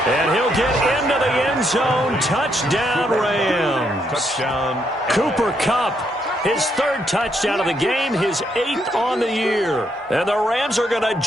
And he'll get into the end zone. Touchdown, Rams. Touchdown. Cooper Kupp, his 3rd touchdown of the game, his 8th on the year. And the Rams are going to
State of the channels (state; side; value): normal; both; correlation 0.76